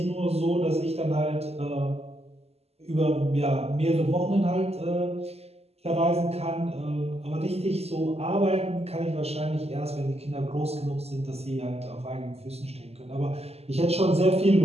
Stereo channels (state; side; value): late; left; 0.30 ms